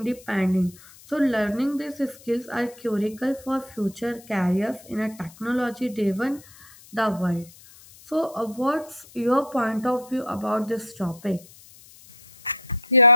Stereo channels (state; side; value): noise; left; hiss, 22 dB below the sound